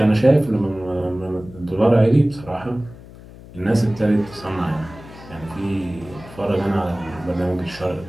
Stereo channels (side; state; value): left; noise; hum, 18 dB below the sound